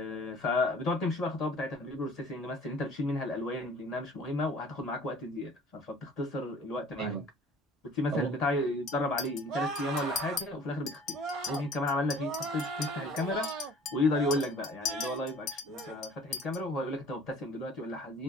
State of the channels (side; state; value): both; normal; correlation 0.50